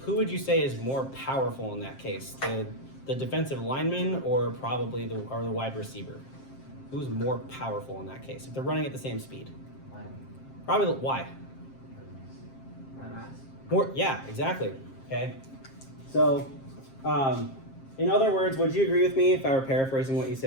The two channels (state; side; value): late; right; 7.5 ms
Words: who would you say is more powerful in that case? The defensive lineman or probably the wide receiver? Who's more powerful in that case if they're running at the same speed? Probably why? More, yeah, exactly. Okay, so. In other words, would you agree with me if I were paraphrasing what you